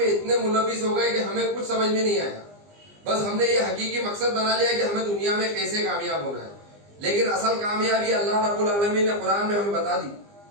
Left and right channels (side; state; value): left; late; 20 ms